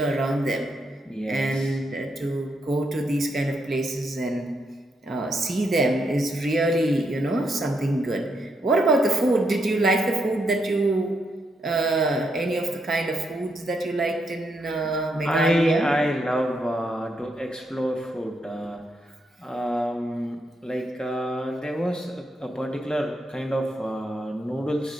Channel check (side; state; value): both; normal; correlation 0.79